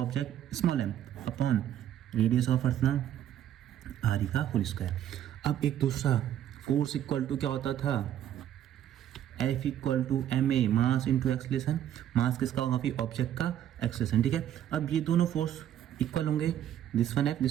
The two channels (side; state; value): left; quieter; 10.9 dB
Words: small m, upon radius of earth ना r ई का होल स्क्वायर। अब एक दूसरा फोर्स इक्वल टू क्या होता था, F equal to M A, mass into acceleration. Mass किसका होगा फिर ऑब्जेक्ट का एक्सलेशन, ठीक है। अब ये दोनों फोर्स इक्वल होंगे, this one F,